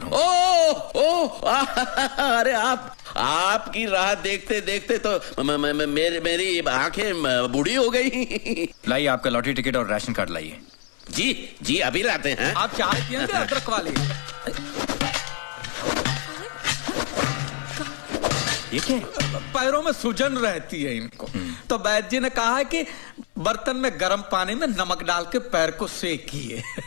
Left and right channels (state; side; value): silent; right; 62 dB below the other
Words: हूँ। अरे आपकी राह देखते देखते तो मेरी आंखें बूढ़ी हो गई। लाइए आपका लॉटरी टिकट और राशन कार्ड लाइए। जी अभी लाते हैं। आप चाय पियेंगे अदरक वाली? ये क्या है? पैरों में सूजन रहती है इनको, तो वैद्य जी ने कहा है कि बर्तन में गर्म पानी में नमक डाल के पैर को सेकिए।